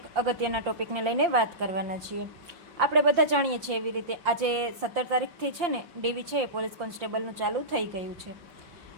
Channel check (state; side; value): late; left; 5.7 ms